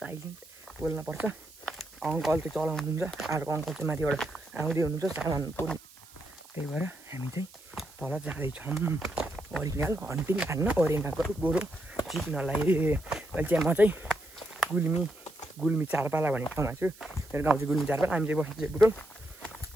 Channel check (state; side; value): noise; right; hiss, 23 dB below the sound